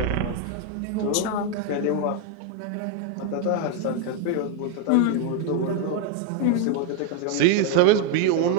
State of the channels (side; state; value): both; different; correlation 0.01